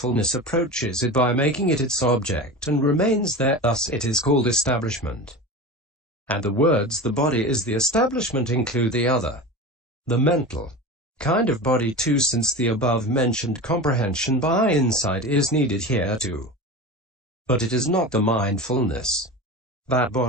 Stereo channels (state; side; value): normal; both; correlation 0.29